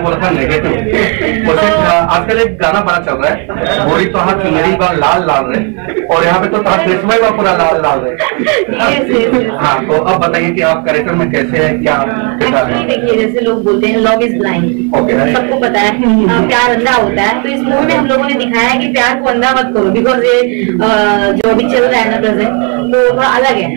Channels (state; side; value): quieter; left; 36.4 dB